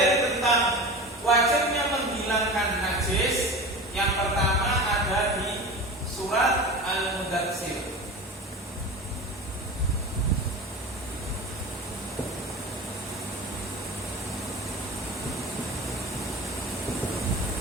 tentang wajibnya menghilangkan najis yang pertama ada di surat Al-Mudatsir.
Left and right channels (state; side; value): normal; both; correlation 0.32